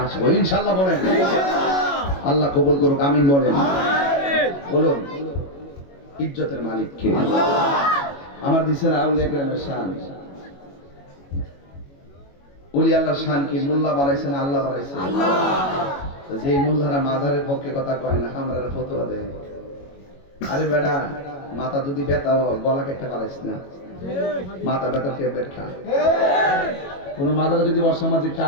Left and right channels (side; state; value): right; late; 21 ms